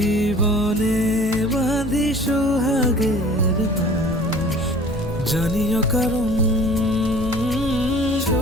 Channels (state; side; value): noise; right; hum, 17 dB below the sound